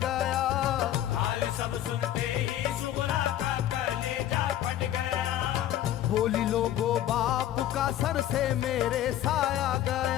हाल सब सुनते ही सुगरा का कलेजा फट गया। बोली लोगो बाप का सर से मेरे साया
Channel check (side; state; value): right; quieter; 12.2 dB